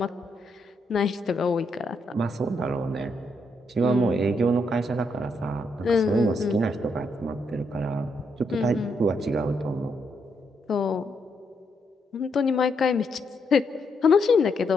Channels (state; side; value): normal; both; correlation 0.78